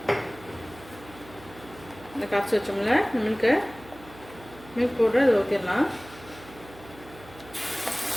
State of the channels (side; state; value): right; noise; hum, 20 dB below the sound